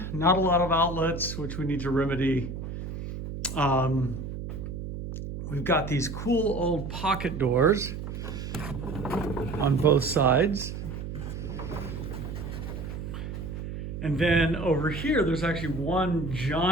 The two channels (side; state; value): right; noise; hum, 7 dB below the sound